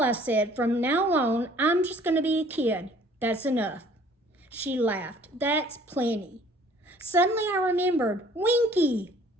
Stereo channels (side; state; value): both; normal; correlation 0.55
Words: I said, from now on, I'm just going to be a kid. That's enough. She laughed. That's plenty. Suddenly I remembered. Winky!